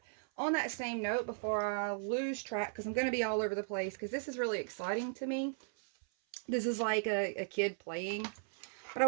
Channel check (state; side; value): silent; left; 53 dB below the other